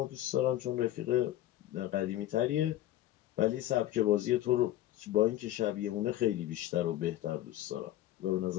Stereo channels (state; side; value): quieter; right; 13.8 dB